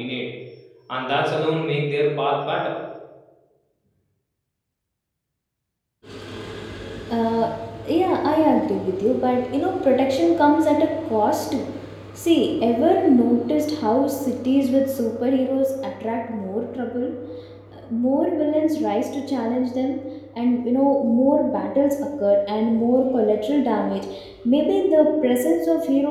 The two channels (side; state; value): both; identical; correlation 1.00